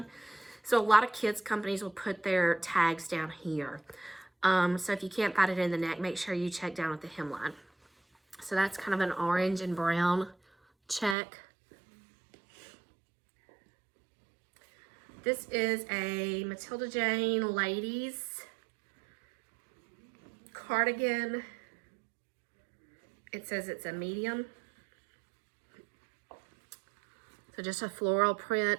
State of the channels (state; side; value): drops out; left; at 11.2 s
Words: So a lot of kids companies will put their tags down here. So if you can't find it in the neck, make sure you check down at the hemline. So that's kind of an orange and brown check. This is a Matilda Jane ladies cardigan. It says it's a medium. So just a floral